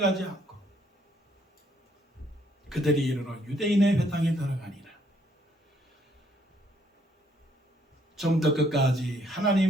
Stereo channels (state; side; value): normal; both; correlation 0.68